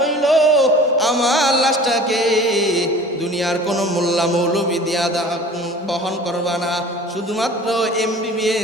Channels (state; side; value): normal; both; correlation 0.43